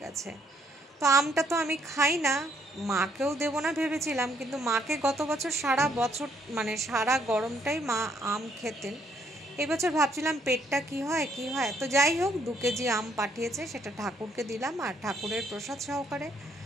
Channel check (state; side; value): normal; both; correlation 0.69